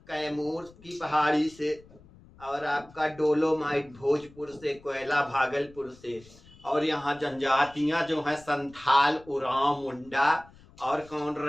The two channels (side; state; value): left; noise; rumble, 24 dB below the sound